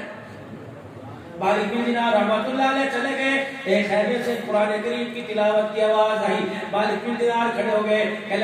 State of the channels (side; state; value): both; identical; correlation 1.00